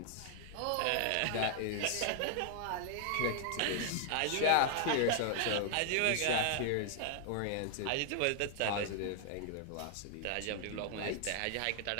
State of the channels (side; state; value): both; different; correlation 0.00